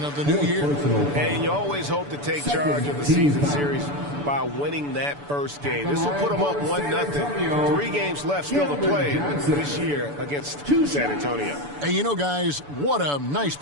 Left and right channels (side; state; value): left; late; 6.9 ms